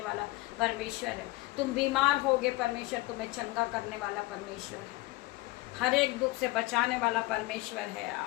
वाला परमेश्वर है। तुम बीमार होगे, परमेश्वर तुम्हें चंगा करने वाला परमेश्वर है। हर एक दुख से बचाने वाला परमेश्वर है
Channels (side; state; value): right; quieter; 20.9 dB